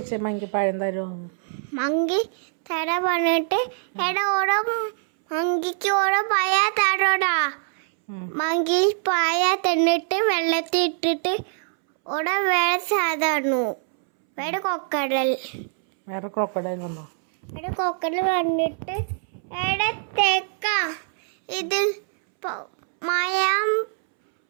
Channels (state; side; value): silent; left; 63 dB below the other